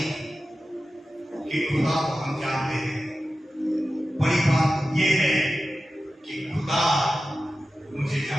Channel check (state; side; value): normal; both; correlation 0.94